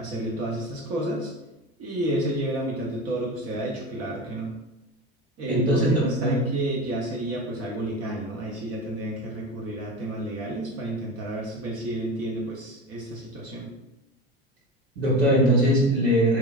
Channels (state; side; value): normal; both; correlation 0.28